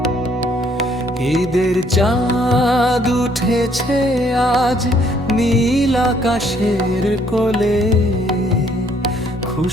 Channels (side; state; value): both; normal; correlation 0.65